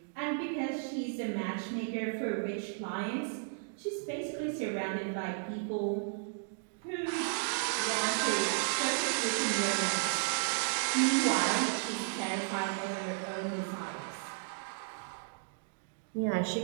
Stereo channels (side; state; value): left; silent; digital silence